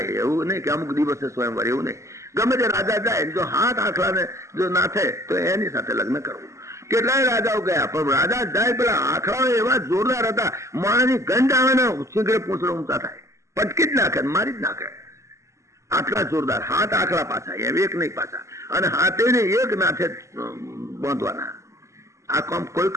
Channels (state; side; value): late; left; 0.14 ms